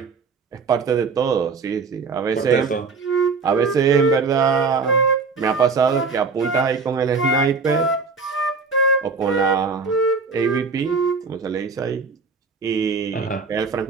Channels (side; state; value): left; quieter; 4.7 dB